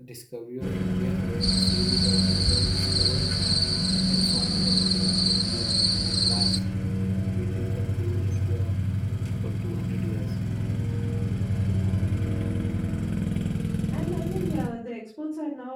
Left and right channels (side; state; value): both; identical; correlation 1.00